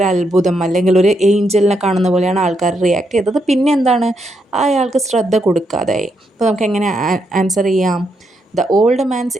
അത്ഭുതം അല്ലെങ്കിൽ ഒരു ഏഞ്ചലിനെ കാണുന്ന പോലെയാണ് ആൾക്കാർ റിയാക്ട് ചെയ്തത്. പിന്നെ എന്താണ്, അയാൾക്ക് ശ്രദ്ധ കൊടുക്കാതായി. അപ്പോൾ നമുക്ക് എങ്ങനെ ആൻസർ ചെയ്യാം? The old man's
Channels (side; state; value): both; normal; correlation 0.80